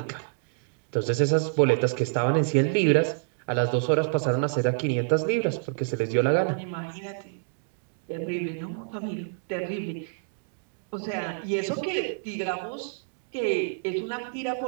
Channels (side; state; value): left; silent; digital silence